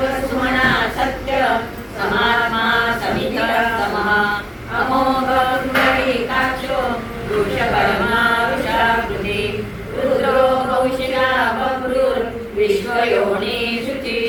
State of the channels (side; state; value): both; identical; correlation 1.00